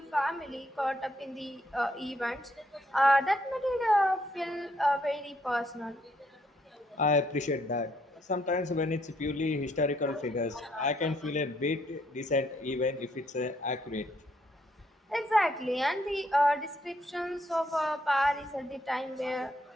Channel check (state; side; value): normal; both; correlation 0.72